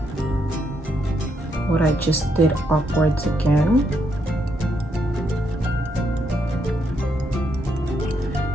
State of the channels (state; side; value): normal; both; correlation 0.77